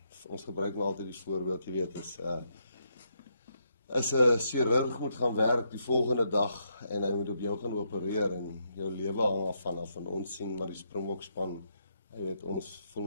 Ons gebruik maar altyd die voorbeeld, jy weet, as 'n chirurg moet gaan werk die volgende dag en hy moet op jou gaan opereer en jou lewe hang af van ons sien maar die Springbok span, jy weet, ons voel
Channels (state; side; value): inverted; both; correlation -0.78